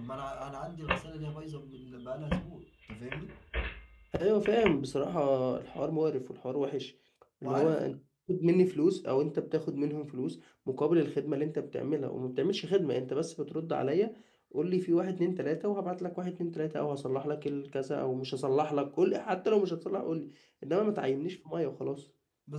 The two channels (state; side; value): identical; both; correlation 1.00